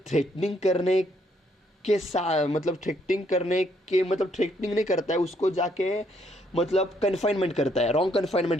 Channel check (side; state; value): both; normal; correlation 0.70